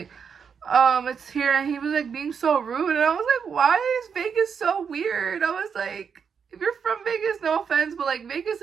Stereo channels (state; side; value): quieter; left; 6.6 dB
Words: it's here. And he was like being so rude, and I was like, why is Vegas so weird? I was like, if you're from Vegas, no offense, but like Vegas